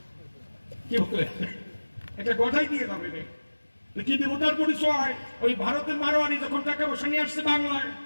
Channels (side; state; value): both; inverted; correlation -1.00